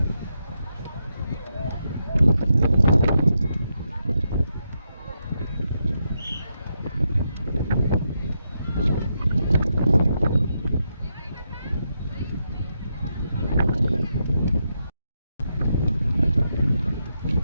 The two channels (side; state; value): both; inverted; correlation -0.83